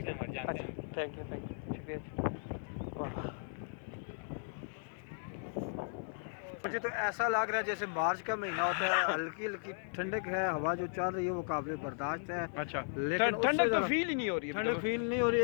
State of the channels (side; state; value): right; silent; digital silence